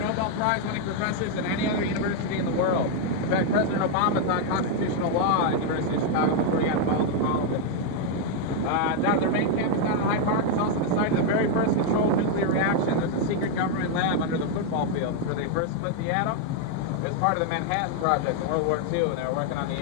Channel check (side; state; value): both; different; correlation 0.01